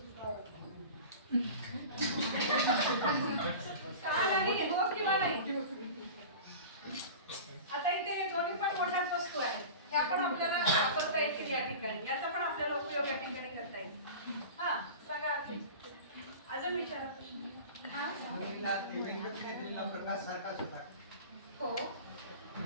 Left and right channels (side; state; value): both; inverted; correlation -0.35